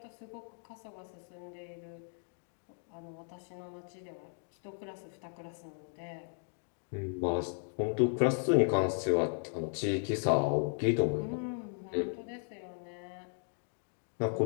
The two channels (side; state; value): right; silent; 54 dB below the other